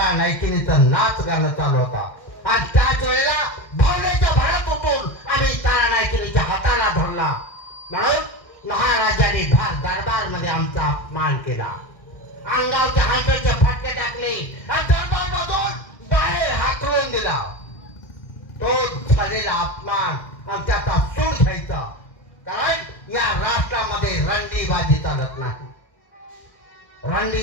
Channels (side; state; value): right; late; 1.6 ms